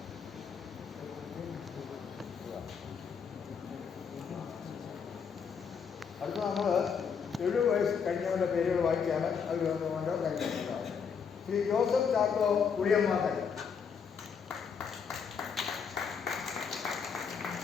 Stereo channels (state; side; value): quieter; right; 6.4 dB